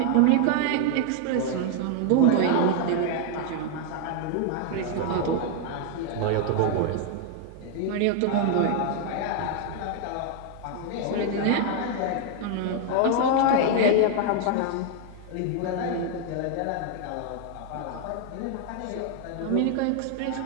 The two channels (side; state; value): both; different; correlation 0.00